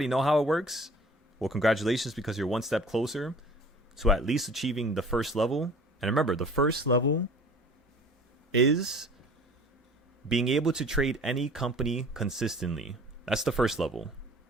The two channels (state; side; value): normal; both; correlation 0.47